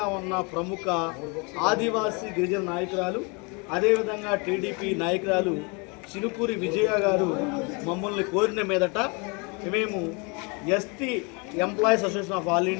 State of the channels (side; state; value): right; quieter; 31.3 dB